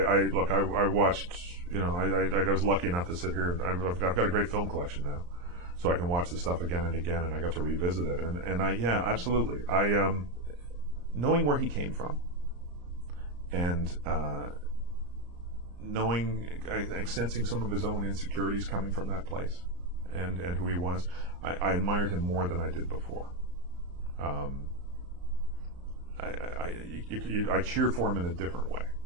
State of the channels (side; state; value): left; late; 34 ms